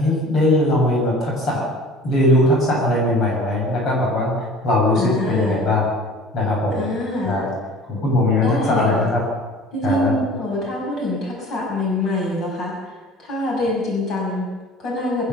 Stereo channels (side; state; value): both; normal; correlation 0.44